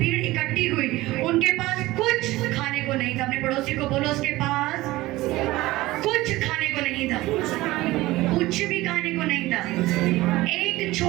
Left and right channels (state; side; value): quieter; left; 18.4 dB